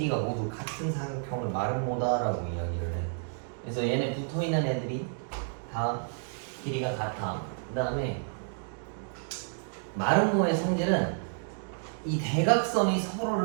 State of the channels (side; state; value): left; silent; 58 dB below the other